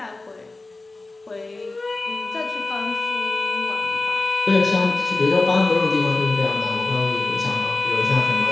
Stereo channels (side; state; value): right; quieter; 3.3 dB